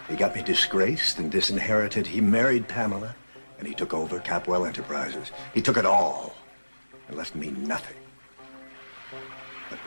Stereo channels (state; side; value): inverted; both; correlation -1.00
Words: He got me disgraced and disinherited. He married Pamela, and he took over Capwell Enterprises. He took it all and left me nothing. But